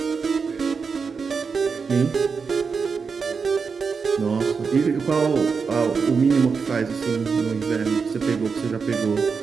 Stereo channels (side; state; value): left; quieter; 5.4 dB